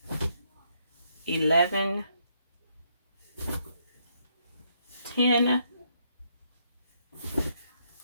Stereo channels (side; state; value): both; inverted; correlation -0.74